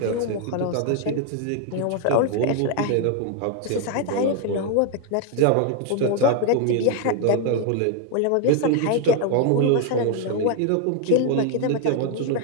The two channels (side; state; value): both; different; correlation 0.01